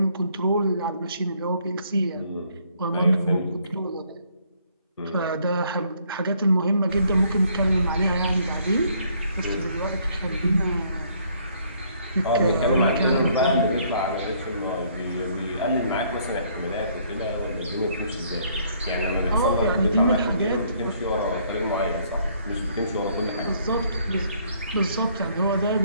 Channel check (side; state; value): both; inverted; correlation -0.65